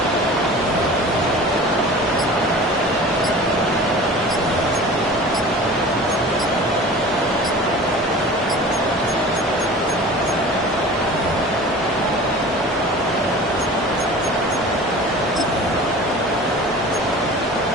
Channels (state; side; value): normal; both; correlation 0.39